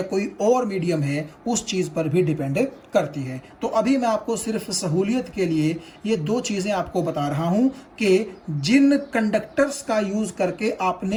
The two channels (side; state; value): both; identical; correlation 1.00